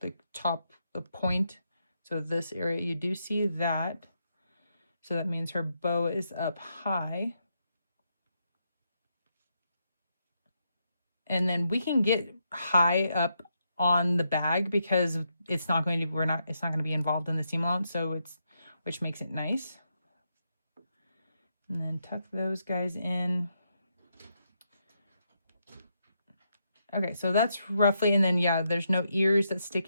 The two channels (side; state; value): both; inverted; correlation -0.81